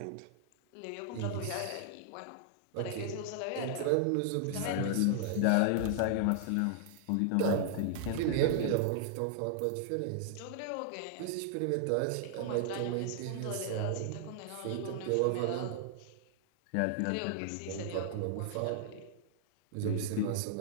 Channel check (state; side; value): different; both; correlation -0.01